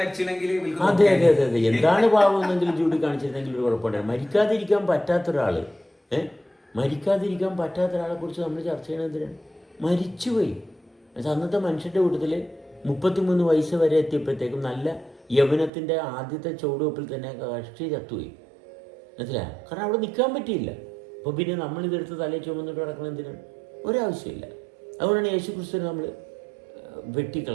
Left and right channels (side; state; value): left; drops out; at 15.7 s